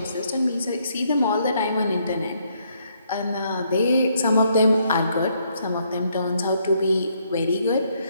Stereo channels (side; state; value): both; inverted; correlation -0.72